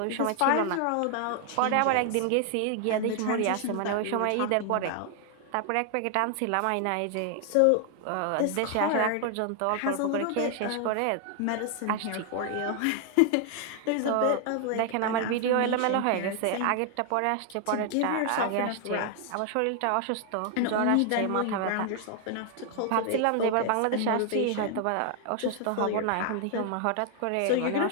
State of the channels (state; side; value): different; both; correlation 0.00